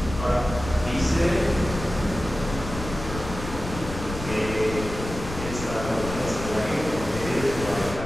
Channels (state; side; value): noise; left; rumble, 9 dB below the sound